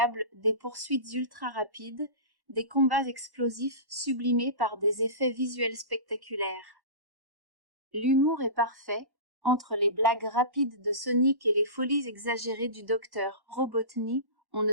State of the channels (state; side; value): late; left; 1.1 ms